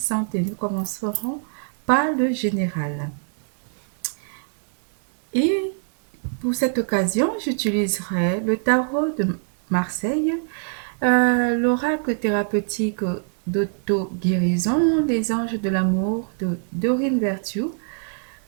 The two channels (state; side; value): silent; left; 62 dB below the other